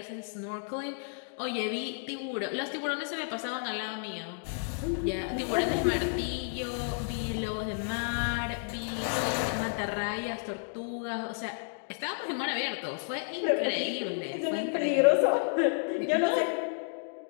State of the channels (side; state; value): right; silent; digital silence